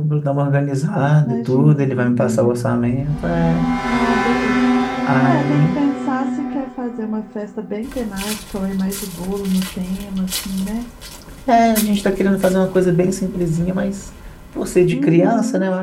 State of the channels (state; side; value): identical; both; correlation 1.00